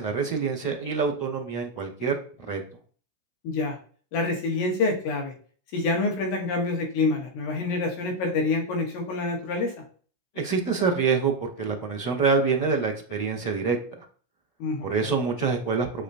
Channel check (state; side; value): late; right; 16 ms